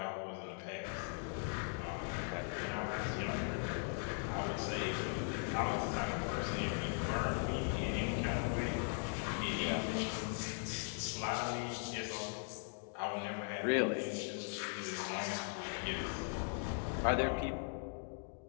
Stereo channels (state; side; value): silent; right; 51 dB below the other